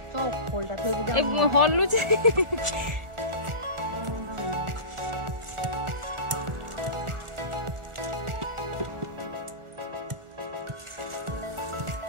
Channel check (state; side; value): late; left; 1.4 ms